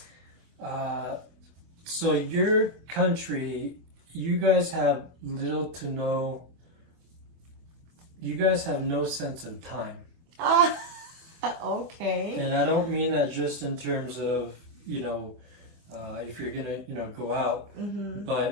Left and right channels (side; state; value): left; late; 24 ms